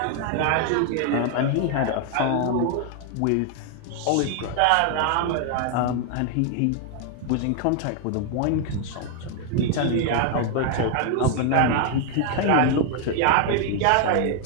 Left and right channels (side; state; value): both; different; correlation 0.00